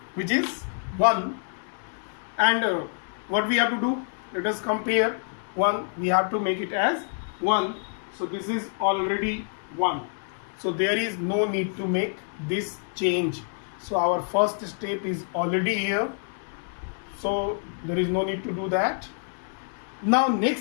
which is 1, and what we have to do? Let us compare 1. We have to make it as 1. So this is already 1. So there is no need to make this change. So our first step is already here. So there is no need to do that. Now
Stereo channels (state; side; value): silent; right; digital silence